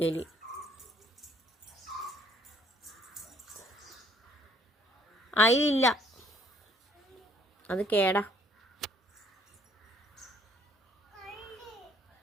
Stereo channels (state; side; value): normal; both; correlation 0.62